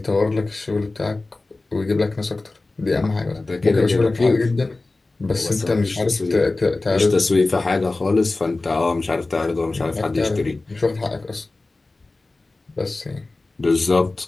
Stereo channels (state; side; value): quieter; right; 3.2 dB